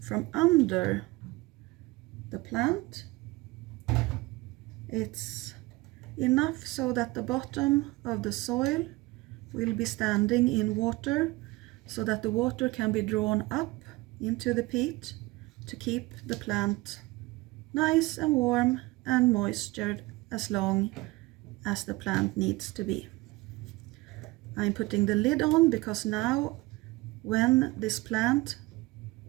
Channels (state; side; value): quieter; left; 21.5 dB